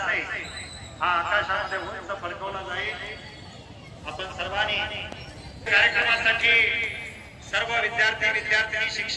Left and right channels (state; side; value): identical; both; correlation 1.00